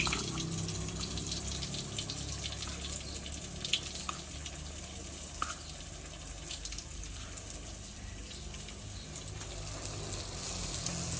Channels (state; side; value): identical; both; correlation 1.00